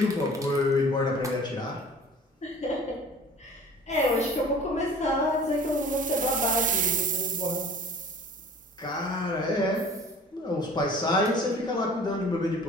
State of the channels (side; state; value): both; normal; correlation 0.46